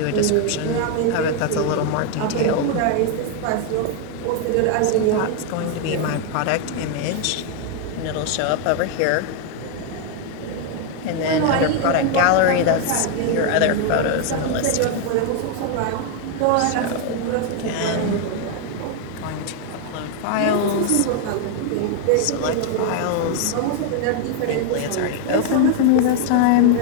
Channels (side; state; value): both; different; correlation 0.00